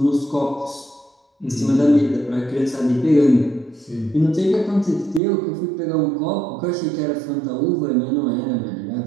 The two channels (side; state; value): left; drops out; at 5.2 s